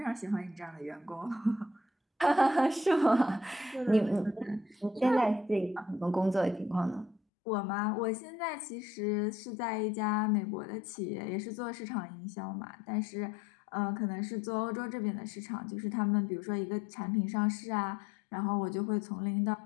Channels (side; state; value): right; drops out; at 7.2 s